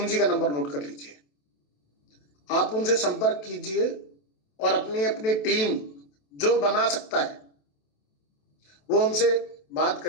जी का नंबर नोट कर लीजिए। आप उनसे संपर्क कीजिए और अपनी अपनी टीम जो बना सकता है वो उनसे बात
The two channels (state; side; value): late; right; 27 ms